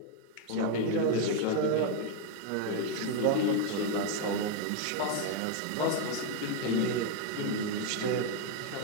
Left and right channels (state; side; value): different; both; correlation 0.01